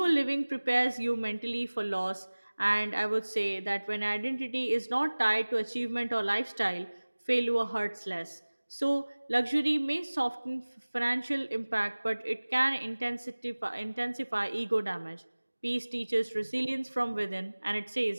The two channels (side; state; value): both; inverted; correlation -1.00